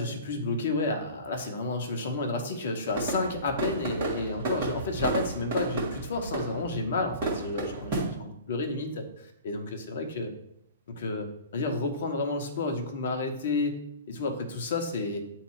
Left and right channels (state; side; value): inverted; both; correlation -0.40